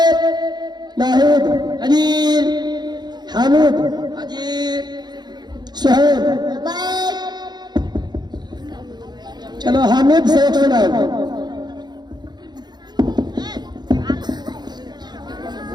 नाहिद, हाजिर। हामिद, हाजिर। सुहेब। लबैक। चलो हामिद से एक सुनाओ।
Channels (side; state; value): left; late; 0.20 ms